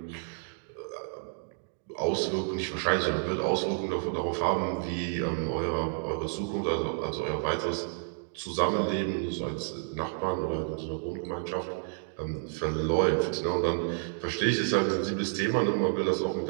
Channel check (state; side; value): silent; left; 58 dB below the other